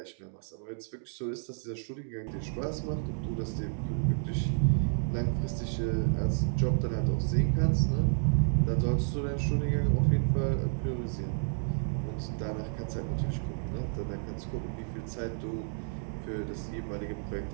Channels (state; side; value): silent; left; digital silence